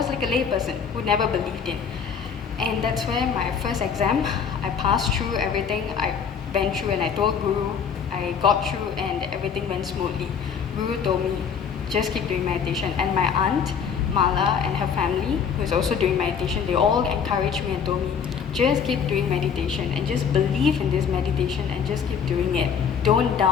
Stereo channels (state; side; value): quieter; right; 6.9 dB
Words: like a layperson who never believed in. And that's where my first exam, I passed through everything. I went through and I told Guru, I got through and everything went smoothly. Guru told me, just keep doing meditation. And my aunt, Mala, and her family, who is also doing meditation, they all encouraged me and told me, just keep doing meditation and just believe in this meditation and just keep doing it. Don't